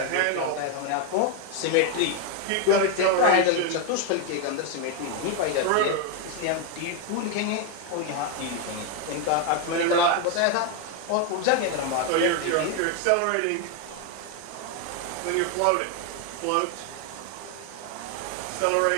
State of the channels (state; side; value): different; both; correlation 0.01